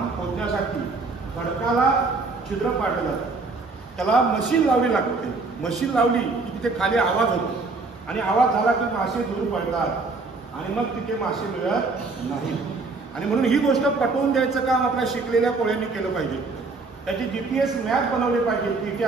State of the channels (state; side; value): quieter; left; 3.8 dB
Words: खोदण्यासाठी खडकाला छिद्र पाडलं जातं, त्याला मशीन लावली लागते. मशीन लावली की तिथे खाली आवाज होतो आणि आवाज झाला की मासे दूर पडतात आणि मग तिथे मासे मिळत नाही. आणि म्हणून ही गोष्ट पटवून द्यायचं काम आपल्या शिकलेल्या कोळ्यांनी केलं पाहिजे. त्याची GPS मॅप बनवली पाहिजे की इथे